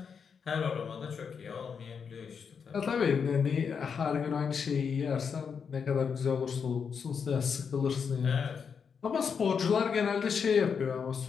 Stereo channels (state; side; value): quieter; right; 6.4 dB